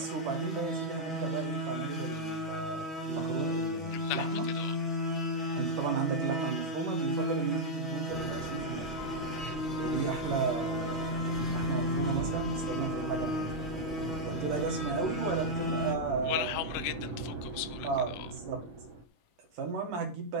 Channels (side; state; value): both; normal; correlation -0.04